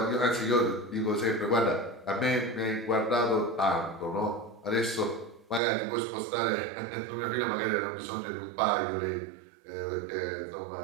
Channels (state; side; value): drops out; left; at 5.6 s